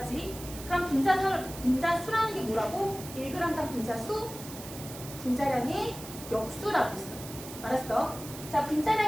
그럼 분자수라는 게 뭐라고? 1g당 분자수, 분자량의 역수라고 했어. 알았어? 자,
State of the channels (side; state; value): right; noise; hiss, 13 dB below the sound